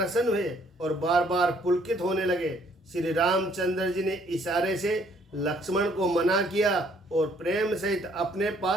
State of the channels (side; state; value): both; normal; correlation 0.64